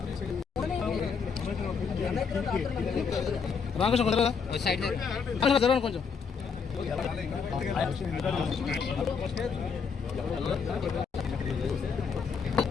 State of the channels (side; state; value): right; quieter; 5.9 dB